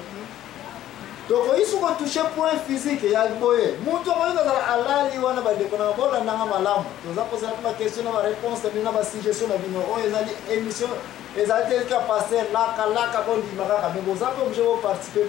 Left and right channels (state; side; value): quieter; right; 12.7 dB